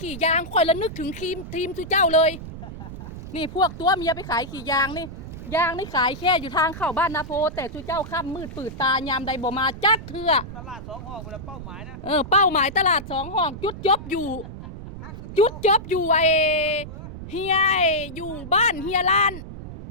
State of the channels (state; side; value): noise; right; rumble, 11 dB below the sound